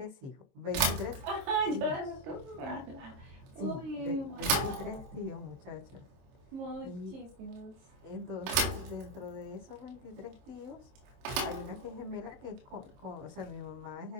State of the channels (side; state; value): left; late; 22 ms